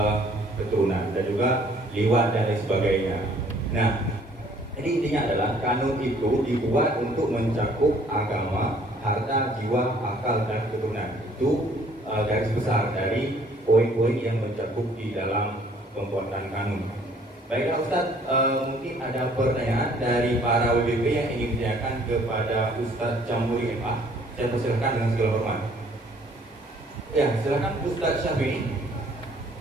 keturunan dan juga liwat dan lain sebagainya. Nah, ini intinya adalah kanun itu dibuat untuk mencakup agama, harta, jiwa, akal, dan keturunan. Itu garis besar dari poin-poin yang mencakup di dalam pembuatan kanun. Baiklah Ustadz, mungkin ada pertanyaan dari para WBP yang ingin ditanyakan kepada Ustadz Jamhuri MA. Saya persilakan dengan segala hormat. Ya, silakan Ustadz Syafi'i.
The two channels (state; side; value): normal; both; correlation 0.59